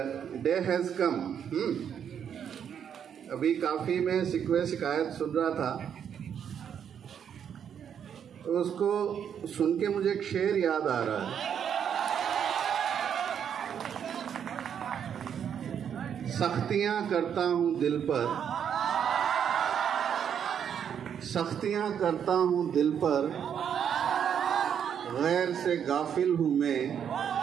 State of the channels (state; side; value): quieter; left; 8.3 dB